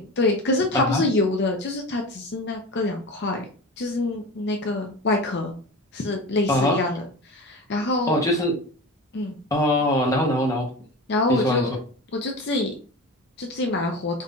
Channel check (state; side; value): normal; both; correlation 0.31